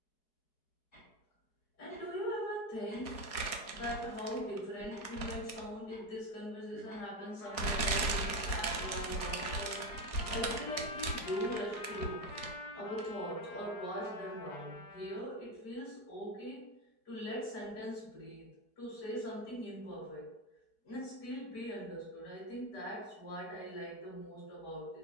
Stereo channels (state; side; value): late; right; 4.7 ms